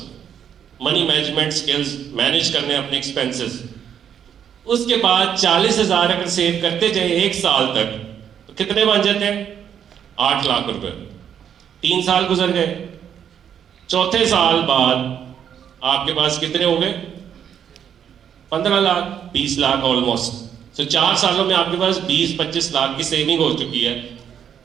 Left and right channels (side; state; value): left; quieter; 8.7 dB